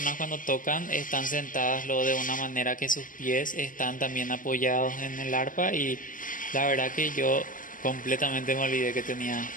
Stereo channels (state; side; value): late; right; 0.39 ms